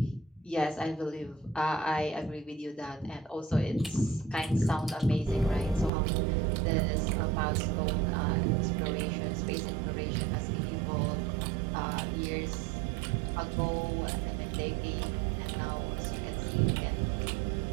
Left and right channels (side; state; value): left; drops out; at 5.9 s